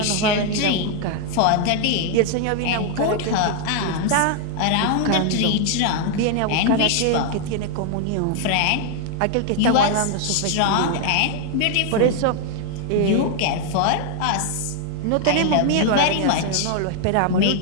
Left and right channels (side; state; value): both; different; correlation 0.00